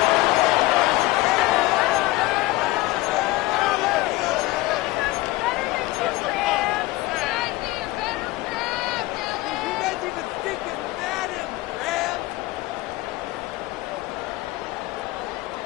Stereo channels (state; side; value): quieter; right; 19.2 dB